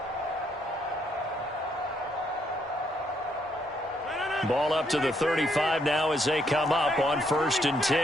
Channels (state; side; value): normal; both; correlation 0.73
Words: Ball up to the 35 now as they come up on 1st and